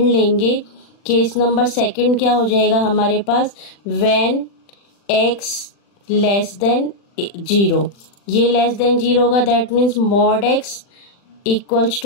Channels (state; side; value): late; right; 40 ms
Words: लेंगे। केस नंबर 2 क्या हो जाएगा हमारे पास, व्हेन x लेस देन 0, ये लेस देन 0 होगा, that means mod x equals